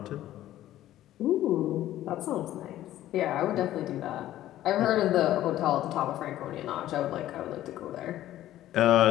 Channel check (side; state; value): right; quieter; 13.6 dB